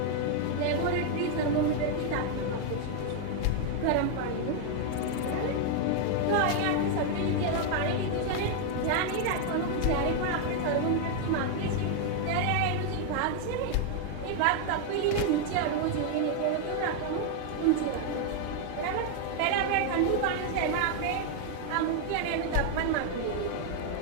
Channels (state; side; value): different; both; correlation 0.00